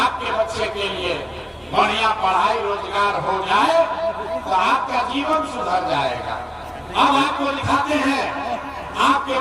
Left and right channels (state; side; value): identical; both; correlation 1.00